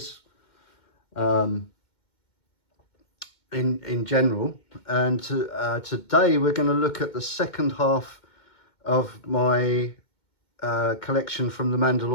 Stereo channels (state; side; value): late; right; 2.2 ms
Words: in general. And today we're going to look at the second half of my collection from the